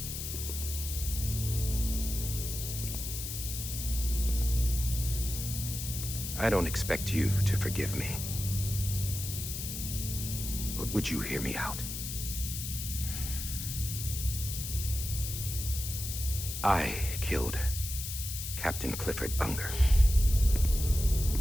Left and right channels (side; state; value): left; noise; hiss, 6 dB below the sound